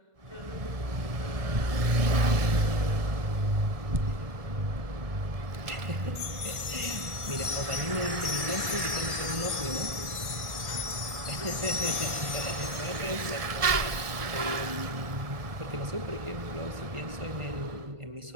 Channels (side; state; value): left; late; 1.4 ms